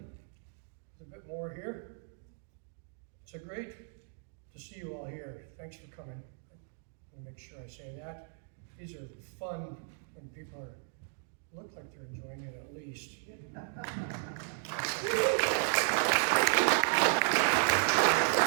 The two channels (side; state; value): left; silent; 55 dB below the other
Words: a bit more here. It's a great to see you all here. Thanks for coming. Let me make sure I say that. These are fun when people look like they're enjoying it at least. It's